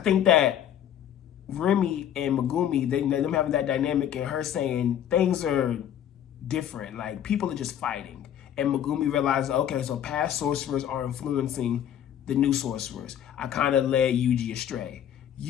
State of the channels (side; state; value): right; quieter; 10.1 dB